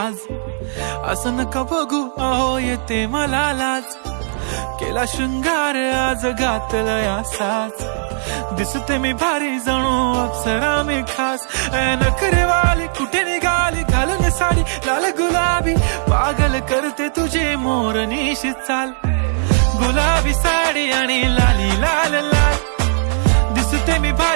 असं नका बघू अहो येते मला लाज. केला शृंगार आज घातला या साज, दिसते मी भारी जणू अप्सरा मी खास. नखरेवाली कुठे निघाली घालून साडी लाल गुलाबी, पागल करते तुझे मोरनीशी चाल. गुलाबी साडी आणि लाली लाल लाल, दिसते मी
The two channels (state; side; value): silent; left; 67 dB below the other